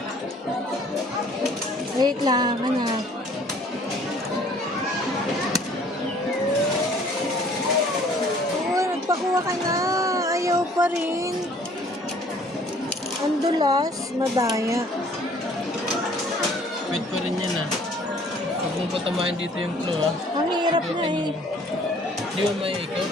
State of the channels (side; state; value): both; normal; correlation 0.56